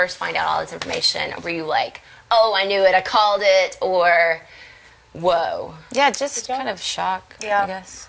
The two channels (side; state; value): both; identical; correlation 1.00